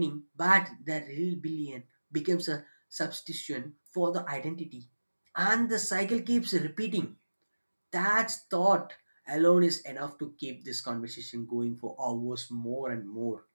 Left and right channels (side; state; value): both; inverted; correlation -1.00